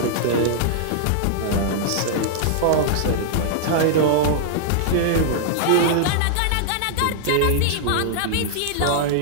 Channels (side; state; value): both; different; correlation -0.01